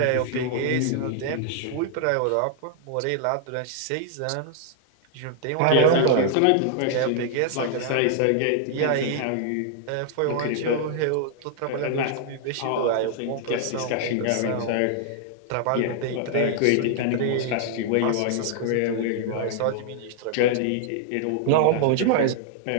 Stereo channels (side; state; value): both; different; correlation -0.01